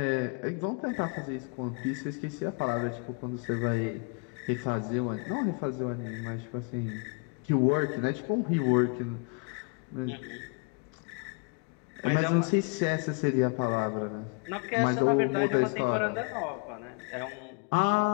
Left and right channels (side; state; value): right; quieter; 34.1 dB